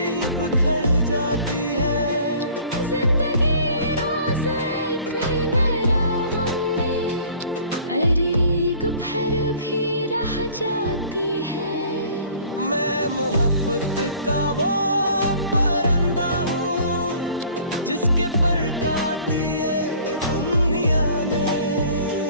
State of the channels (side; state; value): both; inverted; correlation -0.51